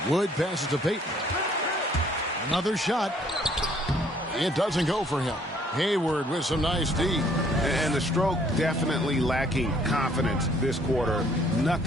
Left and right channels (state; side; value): normal; both; correlation 0.62